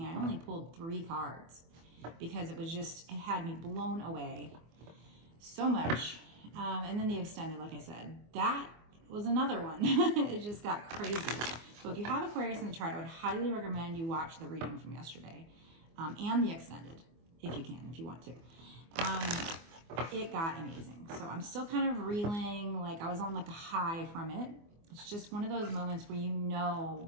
I only pulled 3 cards because it had me blown away so much. And then the extended, like I said, that was another one. It just got crazy. So if you have Aquarius in the chart, I would highly recommend you watch the reading from yesterday and the extended, if you can, if you want to. It got amazing. So I'm still kind of reeling, like I was on like a high from it. It's just one of those moments where you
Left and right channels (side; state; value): left; late; 24 ms